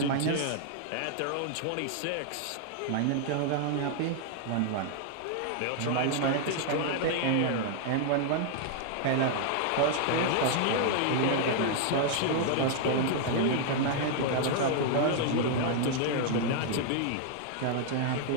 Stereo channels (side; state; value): both; different; correlation 0.00